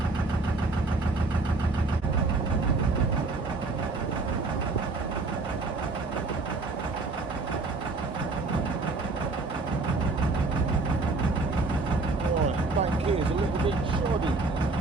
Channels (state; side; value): quieter; left; 3.5 dB